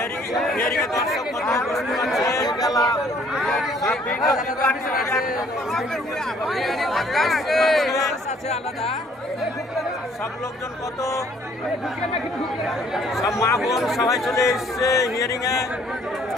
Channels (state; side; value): normal; both; correlation 0.60